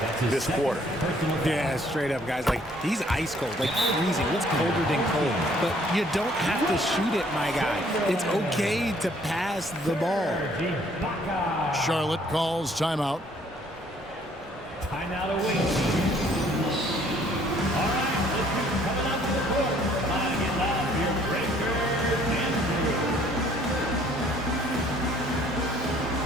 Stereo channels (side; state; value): both; normal; correlation 0.61